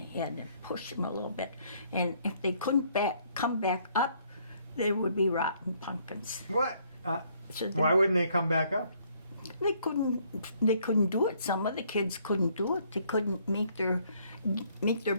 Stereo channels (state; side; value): inverted; both; correlation -0.66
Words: head and push them a little bit. And if they couldn't come back up, there would be rotten pumpkins. What? So Why wouldn't they come back up? They couldn't do it. Some of the kids couldn't do it. They couldn't make their